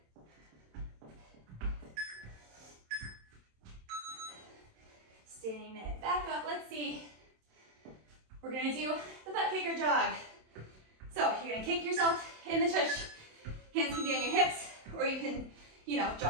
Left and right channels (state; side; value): late; left; 27 ms